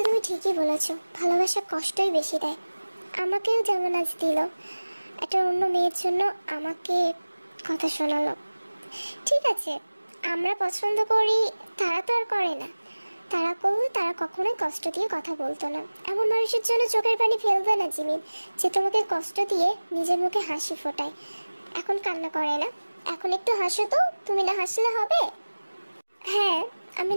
তুমি ঠিকই বলেছো, ভালোবাসা কষ্টই বেশি দেয়। আমাকেও যেমন আজ দিল, একটা অন্য মেয়ের জন্য আমাকে কথা শোনালো। ঠিক আছে, আমরা পছন্দ করি, তারা তো আর করে না। তারা করলে তারা কখনোই কষ্ট দিয়ে কথা বলতো না। এমন মানুষের জন্য চোখের পানি ফেলবে না জিমিন, যে তোমাকে কষ্ট দিয়ে নিজের মুখে হাসি ফোটায়। এখন কান্না করে না, এখন একটু হাসো তো, তুমি না হাসলে হবে? হ্যাঁ, আমি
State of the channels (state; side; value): inverted; both; correlation -1.00